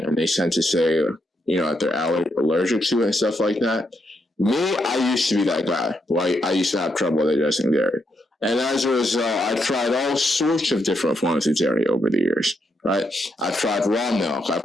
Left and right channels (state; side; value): normal; both; correlation 0.79